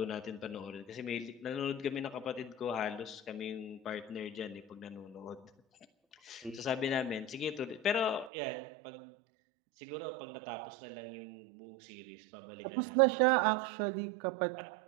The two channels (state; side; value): drops out; left; at 8.3 s